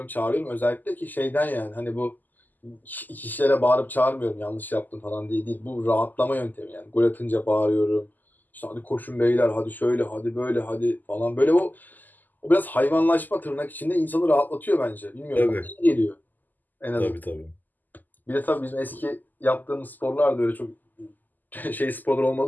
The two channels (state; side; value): late; right; 0.085 ms